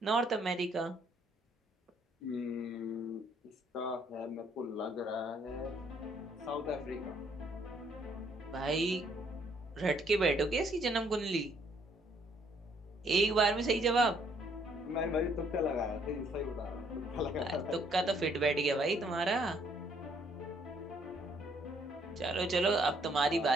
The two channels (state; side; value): normal; both; correlation 0.66